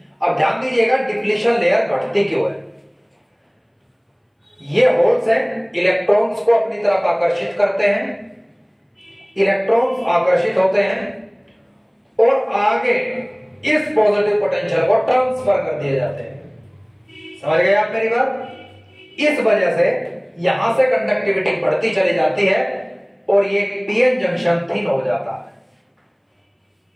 अब ध्यान दीजिएगा, डिप्लीशन लेयर घटती क्यों है? ये होल्स हैं, इलेक्ट्रॉन्स को अपनी तरफ आकर्षित करते हैं, इलेक्ट्रॉन्स आकर्षित होते हैं और आगे इस पॉजिटिव पोटेंशियल को ट्रांसफर कर दिए जाते हैं। समझ गए आप मेरी बात? इस वजह से यहां से कंडक्टिविटी बढ़ती चली जाती है और ये पीएन जंक्शन थिन हो जाता है।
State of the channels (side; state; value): both; identical; correlation 1.00